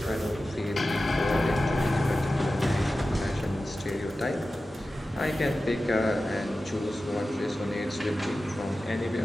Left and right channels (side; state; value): both; normal; correlation 0.94